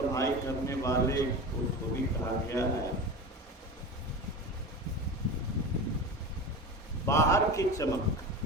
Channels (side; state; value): both; normal; correlation 0.28